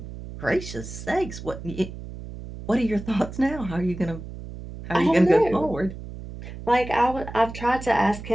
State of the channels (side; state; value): right; noise; hum, 11 dB below the sound